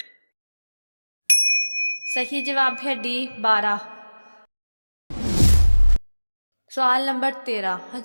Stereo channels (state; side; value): inverted; both; correlation -1.00